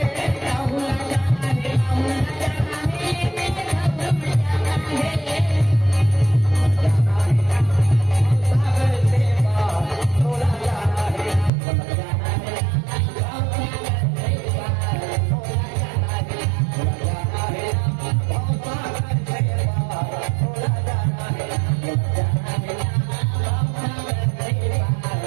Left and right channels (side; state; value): left; drops out; at 11.5 s